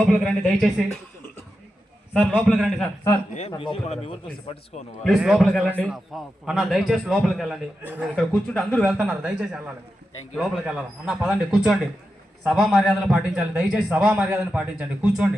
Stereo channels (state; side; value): normal; both; correlation 0.89